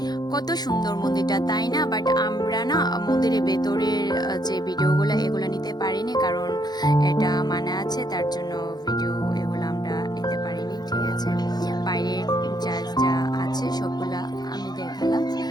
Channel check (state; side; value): late; right; 0.20 ms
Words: কত সুন্দর মন্দিরটা, তাই না? বাট আমরা না মন্দিরের ভেতরের যে ভিডিওগুলো এগুলো নিতে পারিনি, কারণ এটা মানা আছে, তার জন্য ভিডিও এগুলো আমরা নিতে পারিনি। ঠিক আছে, বাইরের যা যা আছে সবগুলা আমি দেখালাম।